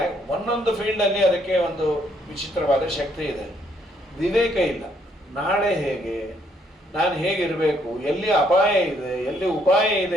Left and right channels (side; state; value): both; normal; correlation 0.69